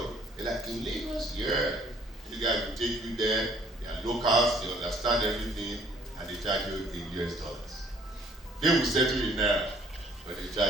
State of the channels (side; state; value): both; normal; correlation 0.60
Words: they're like, in Lagos? Yeah. You guys will take you there, they are locals, they understand everything, and they charge you in US dollars. They will settle in Naira, but they